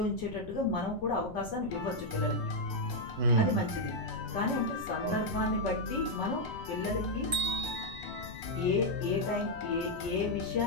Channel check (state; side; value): noise; left; rumble, 14 dB below the sound